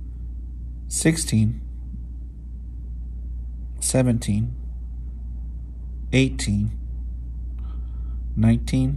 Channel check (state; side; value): identical; both; correlation 1.00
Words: 16, 17, 18,